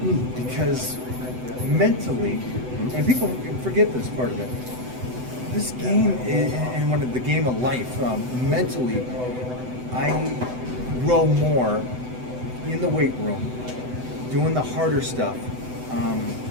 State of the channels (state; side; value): late; left; 8.0 ms